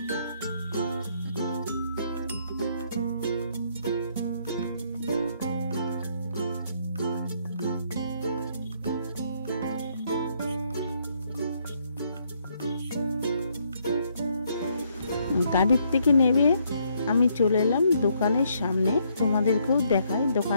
গাড়ির থেকে নেমে আমি চলে এলাম দোকানের সামনে। তোমাদেরকেও দেখাই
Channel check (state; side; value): inverted; both; correlation -0.71